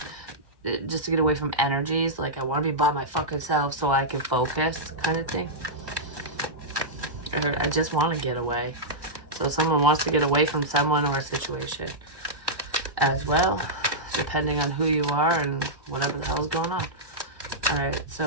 just to get away from energies. Like, I want to be by my fucking self so I can focus, kind of thing. I heard I just want to get away. So someone wants to get away from someone or a situation as well, depending on who you are and whatever the hell's going on. Alright, so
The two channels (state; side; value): late; left; 1.1 ms